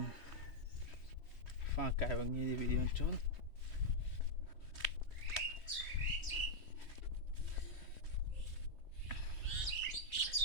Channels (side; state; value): right; late; 3.2 ms